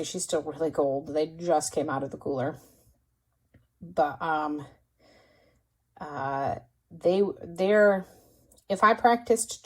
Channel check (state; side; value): identical; both; correlation 1.00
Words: she's still really cold. They just came out of the cooler, but they're, if I practiced